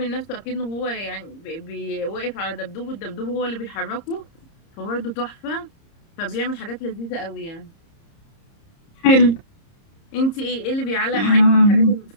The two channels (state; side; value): late; right; 30 ms